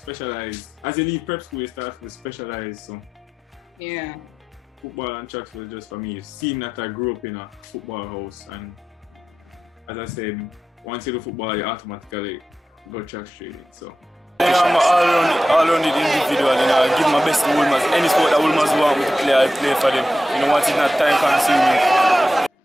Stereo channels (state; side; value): normal; both; correlation 0.91